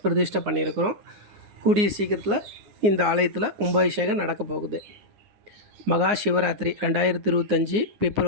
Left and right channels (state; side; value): late; left; 9.5 ms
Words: பிரதிஷ்டை பண்ணியிருக்கிறோம். கூடிய சீக்கிரத்தில் இந்த ஆலயத்தில் கும்பாபிஷேகம் நடக்க போகுது. மகா சிவராத்திரி 2025